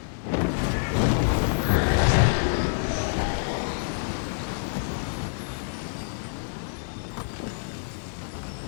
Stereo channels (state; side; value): silent; right; digital silence